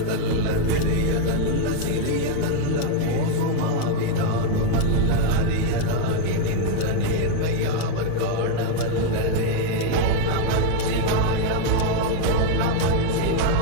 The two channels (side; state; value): both; different; correlation 0.00